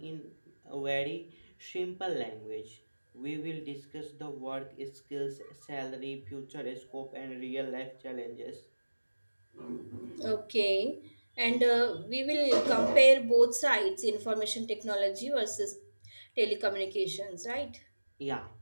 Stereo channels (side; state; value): both; inverted; correlation -1.00